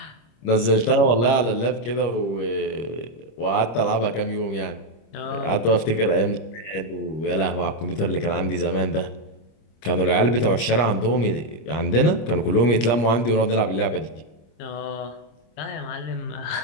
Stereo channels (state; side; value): late; right; 26 ms